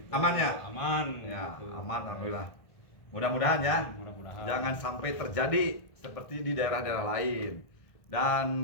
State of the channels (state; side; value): late; right; 1.5 ms